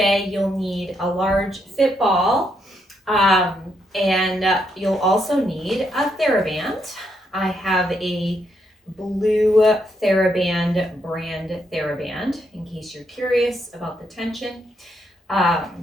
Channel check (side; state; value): both; normal; correlation 0.77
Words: you'll need a large fit ball, and you'll also need a theraband. I have a blue theraband brand theraband in case you're curious about the tension.